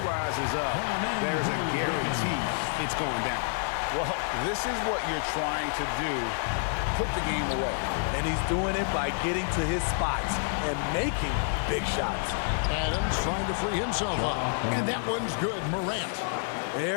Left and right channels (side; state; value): right; silent; digital silence